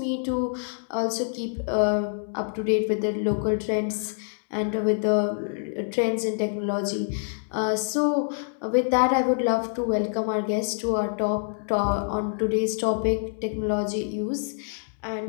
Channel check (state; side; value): silent; right; digital silence